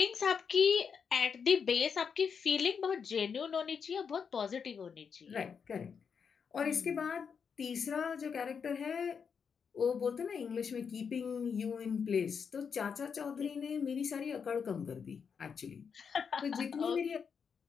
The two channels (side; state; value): right; quieter; 6.4 dB